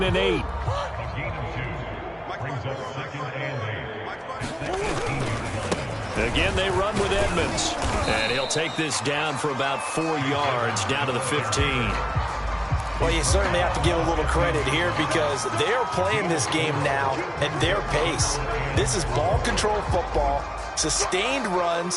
and 8. Again, they run with Edmonds. And he'll take this down for about 4 yards, down to the 15. Well, you certainly have to give a little credit here because they're playing this game now at their pace. This is ball control football, sustained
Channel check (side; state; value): both; identical; correlation 1.00